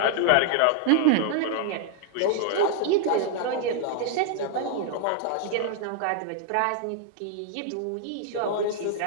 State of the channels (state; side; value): different; both; correlation -0.01